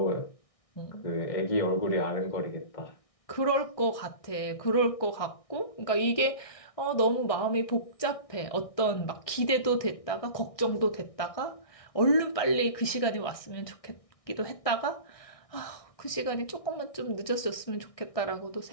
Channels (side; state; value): right; late; 1.6 ms